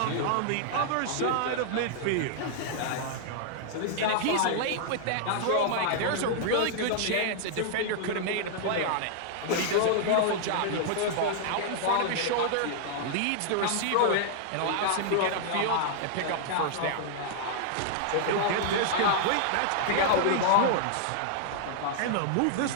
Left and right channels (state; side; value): different; both; correlation -0.01